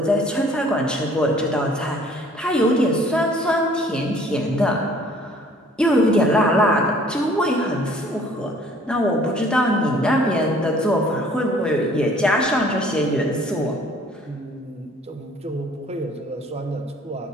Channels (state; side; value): normal; both; correlation 0.55